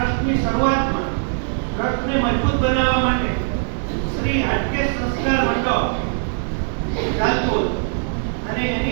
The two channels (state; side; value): silent; left; digital silence